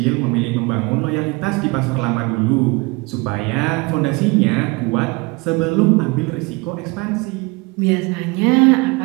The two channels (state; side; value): quieter; left; 26.1 dB